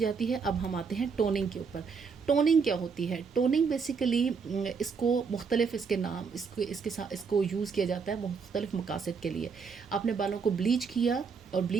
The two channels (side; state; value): left; quieter; 5.5 dB